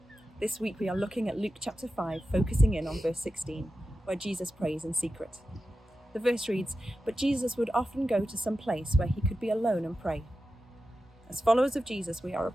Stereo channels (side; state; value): both; normal; correlation 0.92